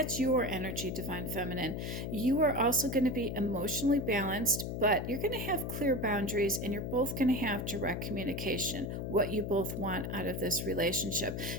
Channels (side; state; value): left; noise; hum, 4 dB below the sound